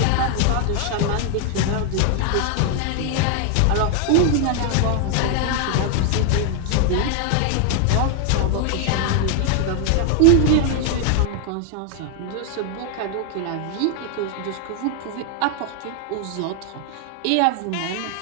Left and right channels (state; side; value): different; both; correlation 0.00